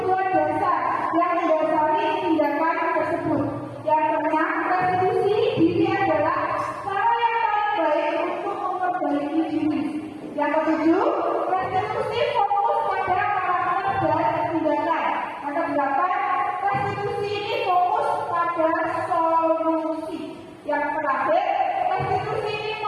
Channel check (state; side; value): identical; both; correlation 1.00